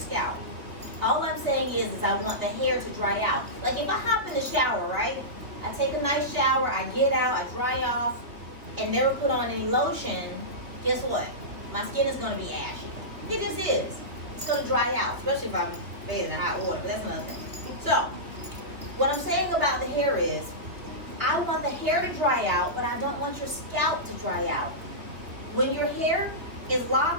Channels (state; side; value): late; left; 3.0 ms